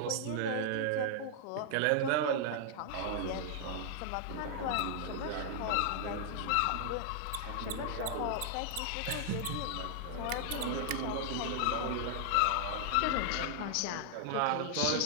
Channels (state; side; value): different; both; correlation -0.01